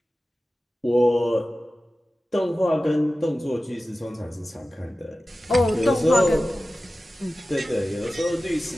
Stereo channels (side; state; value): both; normal; correlation 0.95